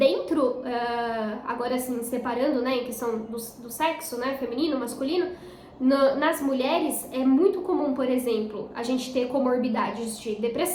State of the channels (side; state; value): both; identical; correlation 1.00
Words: agora assim, separando, né, em questão do sexo, né, feminino, masculino, nas mulheres é muito comum, por exemplo, a gente ter comorbidades de